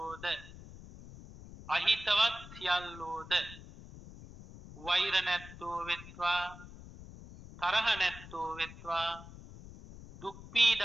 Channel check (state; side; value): noise; left; rumble, 16 dB below the sound